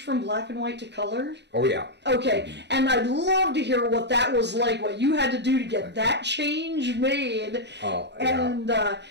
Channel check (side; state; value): left; late; 0.50 ms